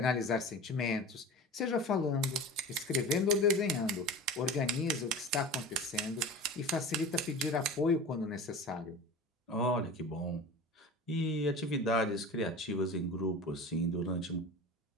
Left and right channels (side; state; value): both; normal; correlation 0.34